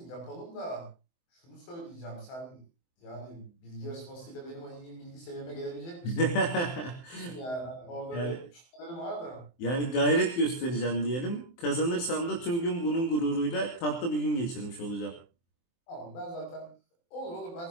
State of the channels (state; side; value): late; right; 23 ms